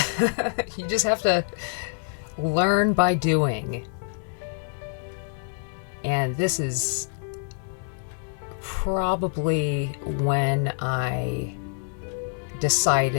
You just have to learn by doing. And this is probably when I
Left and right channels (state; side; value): silent; right; 58 dB below the other